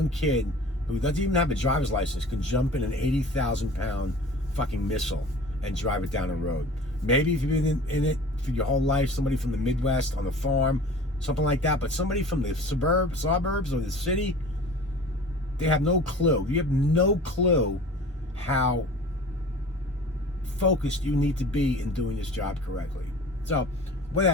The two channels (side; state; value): both; normal; correlation 0.42